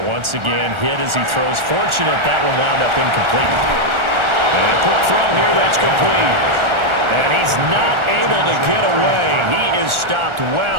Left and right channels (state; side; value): late; left; 1.4 ms